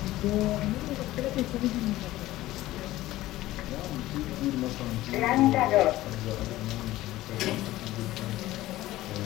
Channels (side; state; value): right; quieter; 16.3 dB